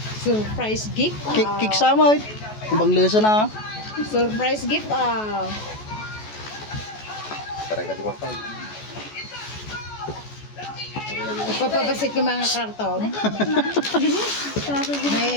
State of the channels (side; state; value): right; late; 14 ms